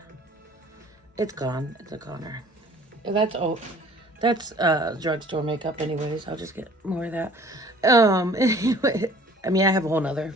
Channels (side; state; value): both; normal; correlation 0.52